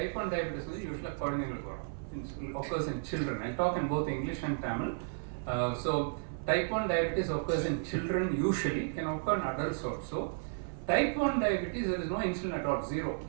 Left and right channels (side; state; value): left; silent; 55 dB below the other